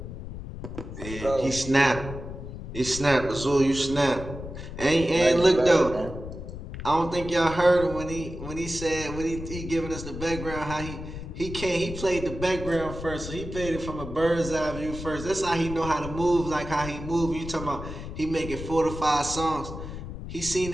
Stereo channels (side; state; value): left; noise; rumble, 9 dB below the sound